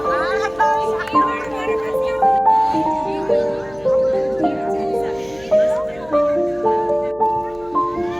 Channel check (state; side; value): noise; left; hum, 23 dB below the sound